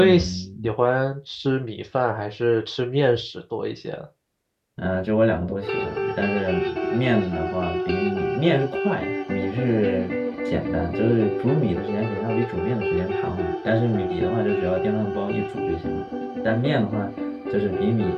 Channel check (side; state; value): both; identical; correlation 1.00